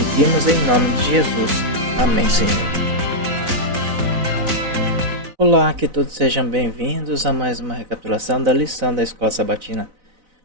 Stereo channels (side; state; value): left; late; 4.0 ms